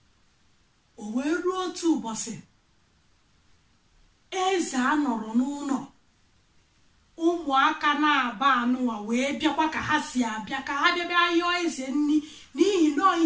O wee ruo otu ụbọchị eze anọrọ n'ụlọ, ụmụaka na-aba anụwa wee bịakwa ka ha si abịa, ka ha bịa yọọ eze nri n'ihi na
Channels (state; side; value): identical; both; correlation 1.00